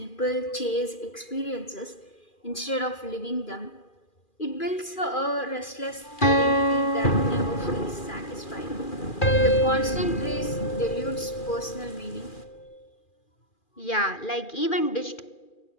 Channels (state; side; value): late; right; 2.4 ms